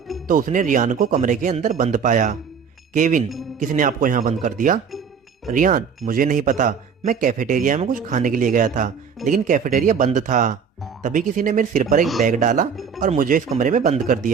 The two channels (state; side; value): quieter; left; 6.5 dB